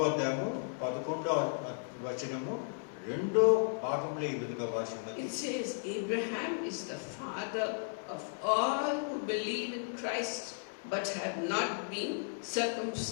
అధ్యాయము 11వ వచనము 2వ భాగంలో ఈ విధంగా భాషిస్తున్నది. it says, Abraham is the father of all who believe in Christ but have not been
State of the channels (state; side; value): silent; right; 55 dB below the other